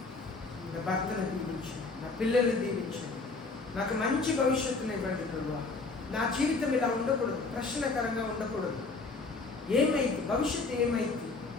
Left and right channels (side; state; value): right; quieter; 3.9 dB